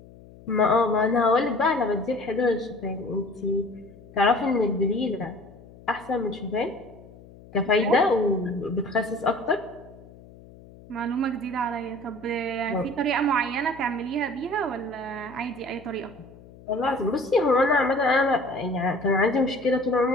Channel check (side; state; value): left; noise; hum, 21 dB below the sound